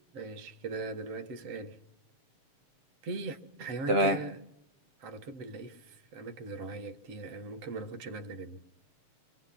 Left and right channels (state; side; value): late; left; 7.1 ms